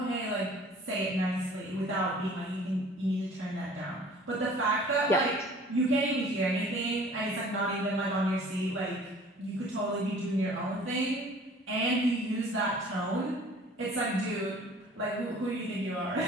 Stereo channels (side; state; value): both; normal; correlation 0.50